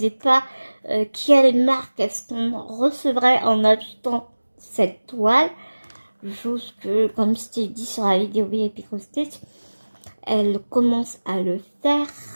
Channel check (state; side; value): inverted; both; correlation -1.00